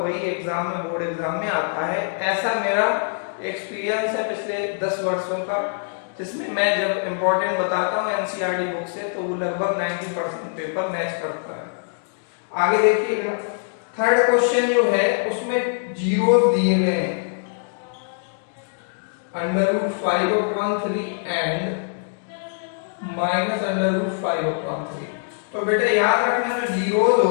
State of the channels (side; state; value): right; silent; digital silence